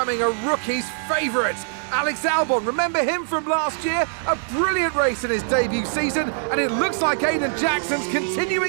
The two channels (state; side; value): silent; left; 64 dB below the other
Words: a rookie's favourite. Alex Albon, remember him from last year? A brilliant race in his debut season, and it looks like Aiden Jackson's